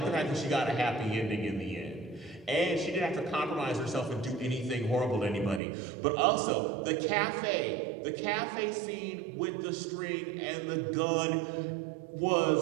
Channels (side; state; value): left; drops out; at 5.6 s